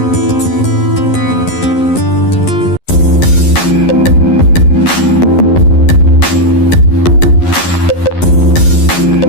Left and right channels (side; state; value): right; late; 11 ms